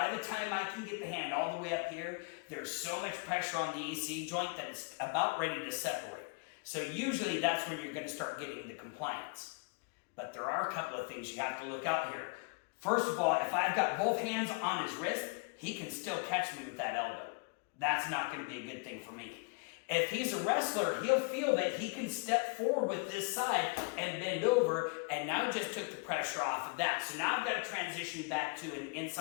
the time I can get the hand all the way up here, there's so much pressure on the AC joint that it's about ready to separate. So usually that's when you're going to start getting the compliance. But there are a couple of things you have to look out here. First of all, if I've got both hands on his wrist, he can still catch me with that elbow. That's not going to be a good thing for me. If he's a wrestler, he'll feel that he can step forward with this side and bend over, and now just took the pressure off of that. So now I've got to transition back to an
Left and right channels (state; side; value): quieter; right; 33.4 dB